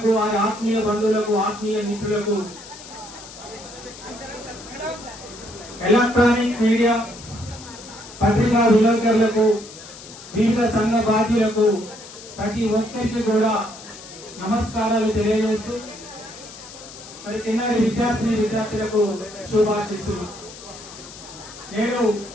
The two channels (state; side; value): noise; left; hiss, 16 dB below the sound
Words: వారి ఆత్మీయ బంధువులకు, ఆత్మీయ మిత్రులకు, ఎలక్ట్రానిక్ మీడియా పత్రికా విలేకరులకు, వివిధ సంఘ బాధ్యులకు, ప్రతి ఒక్కరికి కూడా నమస్కారాలు తెలియజేస్తూ మరి చిన్నారి విద్యార్థులకు శుభాశీస్సులు. నేను